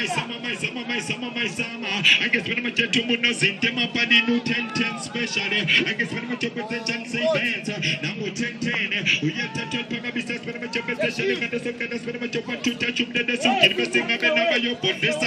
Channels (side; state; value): both; identical; correlation 1.00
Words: I guess when I'm a gentleman, in Temapadi, no 10 specially. I guess when I'm a potential say bands, now 10, we have to Pagabisas when I'm a special, and the Soka, that's when I'm a want to touch up the Suki, investing up in your Podesta,